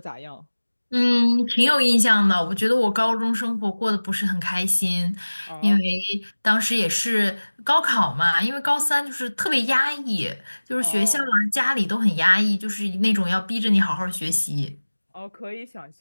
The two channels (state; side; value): inverted; both; correlation -1.00